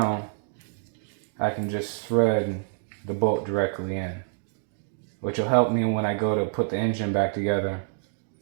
I can just thread the bolt directly in, which will help me when I go to put the engine back together.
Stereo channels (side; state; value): left; silent; 56 dB below the other